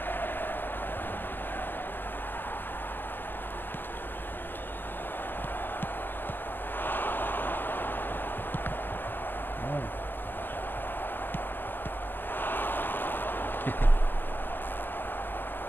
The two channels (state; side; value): late; right; 0.090 ms